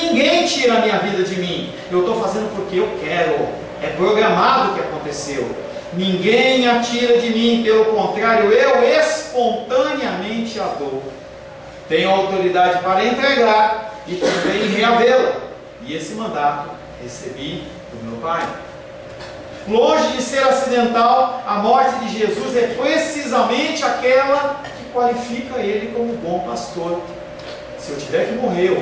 tira a minha vida de mim. Eu estou fazendo porque eu quero. É programado o que aconteceu. Ninguém atira de mim, pelo contrário, eu espontaneamente a dou. Tenho autoridade para entregar e também reavê-la. E esse mandato recebi do meu Pai. Longe de ser acidental, a morte de Jesus é precisamente aquela que qualifica ele como bom pastor. Se eu tiver que morrer,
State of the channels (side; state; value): both; identical; correlation 1.00